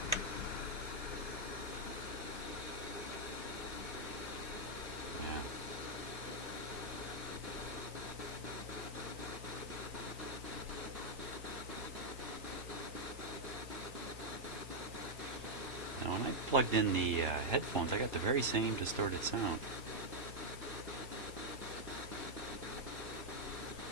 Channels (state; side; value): normal; both; correlation -0.02